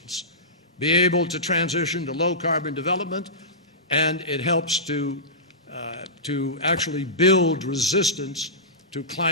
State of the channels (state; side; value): normal; both; correlation -0.18